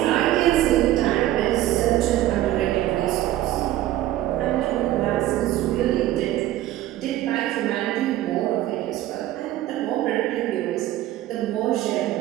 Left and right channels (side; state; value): left; quieter; 14.3 dB